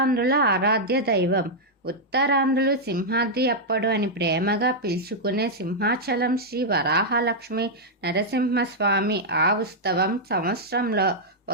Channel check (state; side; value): normal; both; correlation -0.05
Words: ఆరాధ్య దైవం. ఉత్తరాంధ్రులు సింహాద్రి అప్పడు అని ప్రేమగా పిలుచుకునే సింహాచలం శ్రీ వరాహలక్ష్మి నరసింహస్వామి ఆ ఉత్సవం సంవత్సరంలో